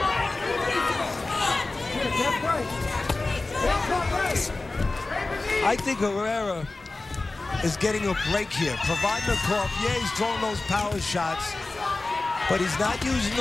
I think Herrera is getting a break here. Provodnikov, yeah, he's throwing those power shots, but he's not using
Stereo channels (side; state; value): right; quieter; 3.2 dB